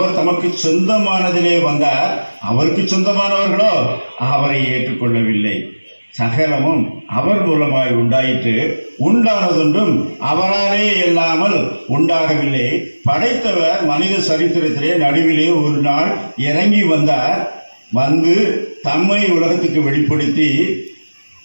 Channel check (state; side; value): inverted; both; correlation -1.00